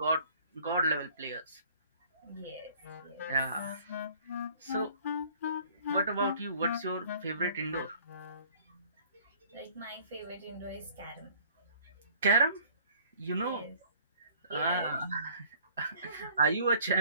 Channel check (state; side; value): inverted; both; correlation -0.54